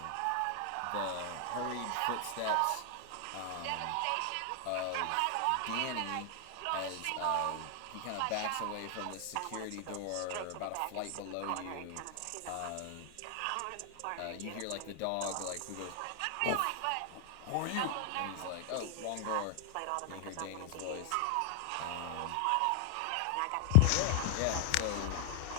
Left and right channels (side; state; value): both; different; correlation 0.00